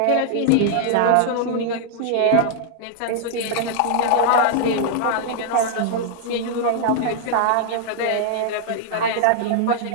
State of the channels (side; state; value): both; different; correlation -0.01